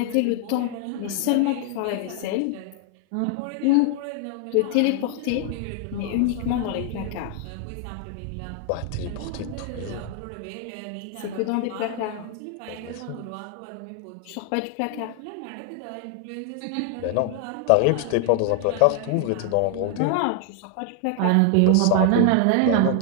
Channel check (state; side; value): different; both; correlation 0.00